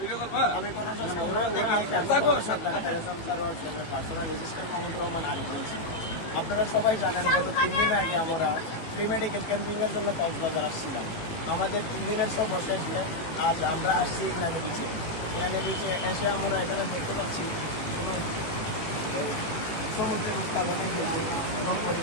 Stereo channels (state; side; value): late; right; 18 ms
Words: আমি পার্সোনাল অ্যাসিস্ট্যান্ট মোহাম্মদ রহমান আরিফ বলছি। আপনারা সবাই জানেন গত 3 দিন আগে আমরা প্রি মেডিকেল ক্যাম্পিংয়ের জন্য কক্সবাজার আসছিলাম। আমাদের 3 দিনের সব বসে দিয়ে আজ আমরা আসছি ইনানি বিচে। ইনানি বিচে এসে আমরা এখানে দেখতে পাচ্ছি সমুদ্রের উত্তাল অনেক বেশি এবং